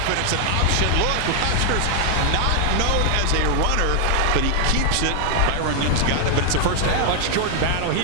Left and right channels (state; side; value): different; both; correlation 0.00